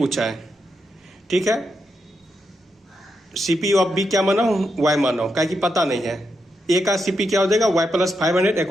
है, ठीक है। CP of B क्या माना हूं Y माना हूं, क्या कि पता नहीं है। ए का सीपी क्या हो जाएगा Y plus 500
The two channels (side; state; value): both; normal; correlation 0.83